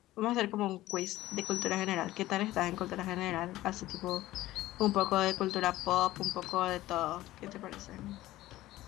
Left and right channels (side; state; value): right; quieter; 16.2 dB